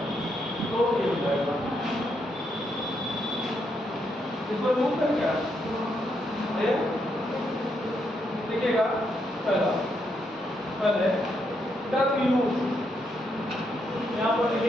तो ये हो जाएगा, इसको रूप कर क्या देखिएगा। पहले टर्म यूज, यहाँ पर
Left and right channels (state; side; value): normal; both; correlation 0.78